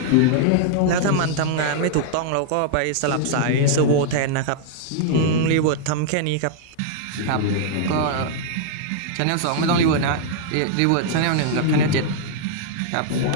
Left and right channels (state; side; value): different; both; correlation -0.01